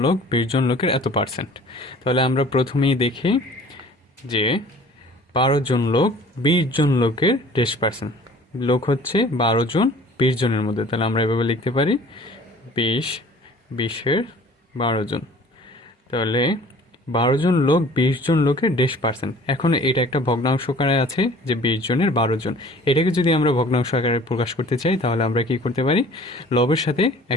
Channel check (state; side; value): normal; both; correlation 0.49